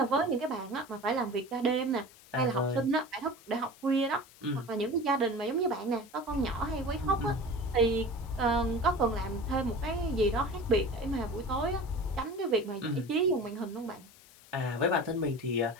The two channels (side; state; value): left; noise; hiss, 23 dB below the sound